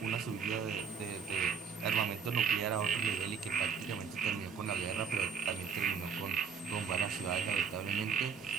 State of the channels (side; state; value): left; quieter; 6.3 dB